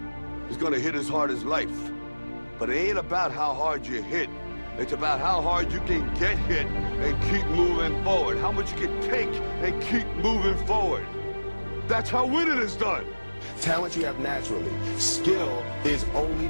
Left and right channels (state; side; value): inverted; both; correlation -1.00